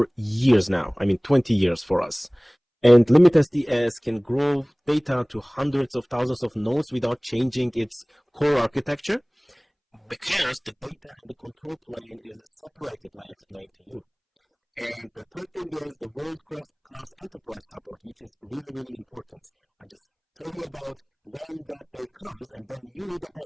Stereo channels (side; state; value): both; identical; correlation 1.00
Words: years now. I mean, 20 years for us. And LINBIT SDS can grow data to hundreds of thousands of nodes without changing its core architecture, because the data and the control plane is separated, like I explained to you. And the third thing is the world-class enterprise support, which is really, really important. I just tell you about when that day comes, and then you need a